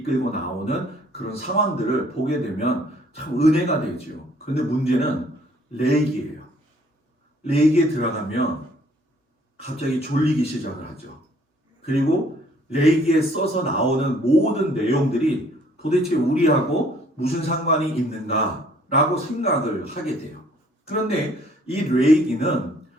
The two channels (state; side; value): normal; both; correlation 0.60